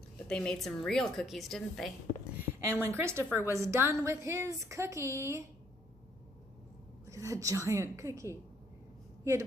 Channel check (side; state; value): both; normal; correlation 0.67